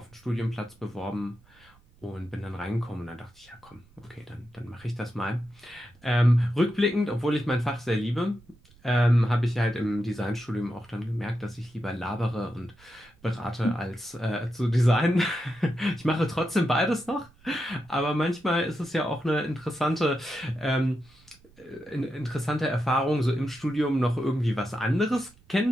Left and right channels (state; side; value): noise; right; rumble, 28 dB below the sound